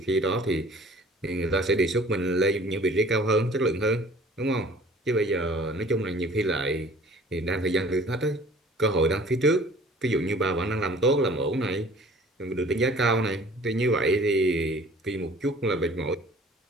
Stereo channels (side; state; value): both; normal; correlation 0.50